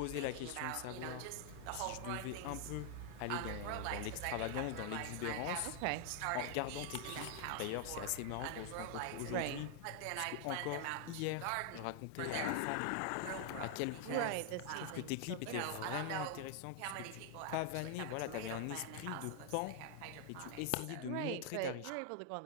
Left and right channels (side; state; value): both; different; correlation 0.00